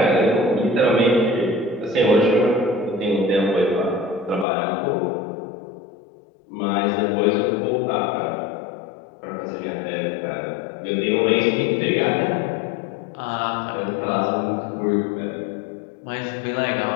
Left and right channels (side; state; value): right; drops out; at 4.5 s